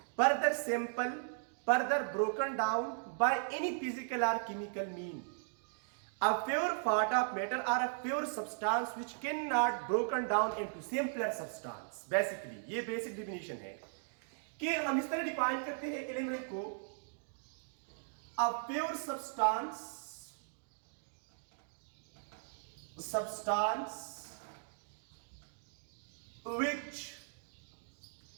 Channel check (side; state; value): left; silent; digital silence